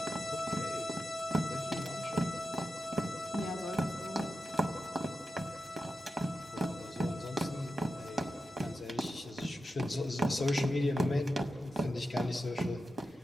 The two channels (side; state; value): both; normal; correlation 0.90